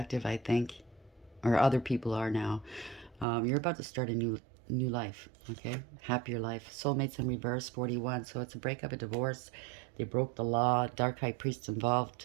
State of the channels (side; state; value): left; drops out; at 3.2 s